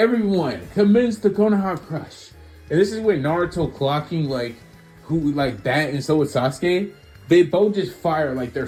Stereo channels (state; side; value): identical; both; correlation 1.00